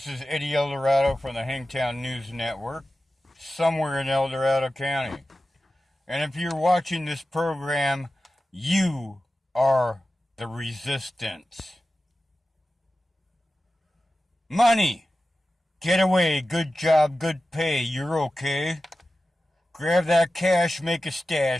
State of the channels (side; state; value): both; normal; correlation 0.94